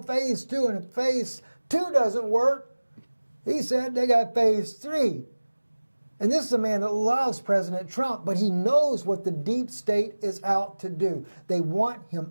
phase 2, and if phase 2 doesn't work, he said they got phase 3. And this is a man that loves President Trump, but he knows what the deep state is out to do. They want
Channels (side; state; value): both; inverted; correlation -1.00